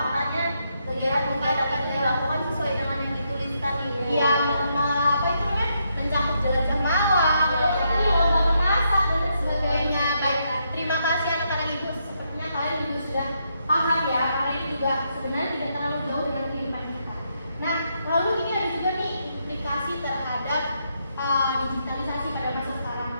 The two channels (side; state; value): both; inverted; correlation -0.79